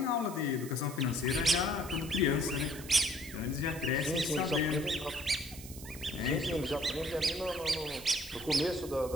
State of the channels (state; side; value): noise; right; hiss, 14 dB below the sound